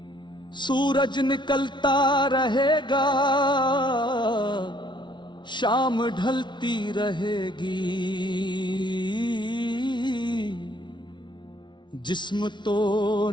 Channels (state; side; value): late; right; 0.23 ms